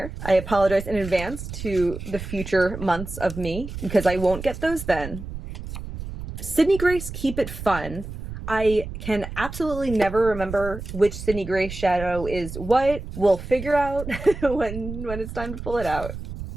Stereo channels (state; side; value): noise; right; rumble, 9 dB below the sound